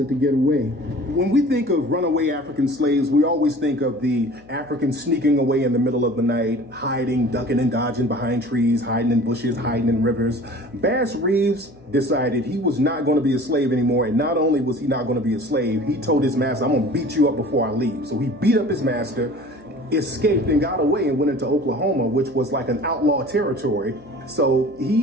to get away. When we think of runaway African slaves, we always think of the Africans sneaking away in the middle of the night, hiding, ducking and dodging behind trees, hiding in bushes, hiding in rivers. Bass Reeves decided he was not going to be a slave anymore, and not only was he not going to be a slave, he told his master, I'm going to beat you up before I leave. So he beat up his master, escaped and got away and went into Oklahoma, which was like an outlaw territory. So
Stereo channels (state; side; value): noise; left; hum, 24 dB below the sound